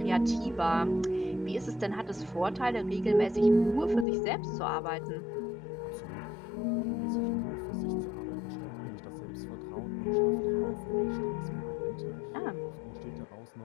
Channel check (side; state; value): right; drops out; at 4.0 s